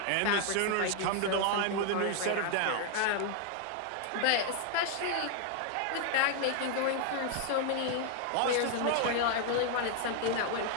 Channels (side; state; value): both; different; correlation 0.00